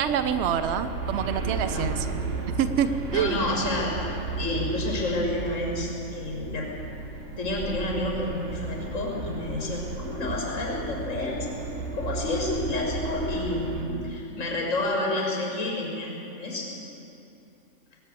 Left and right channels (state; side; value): late; right; 3.1 ms